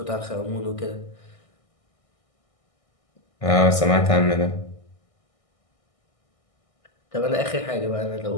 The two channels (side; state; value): right; late; 1.6 ms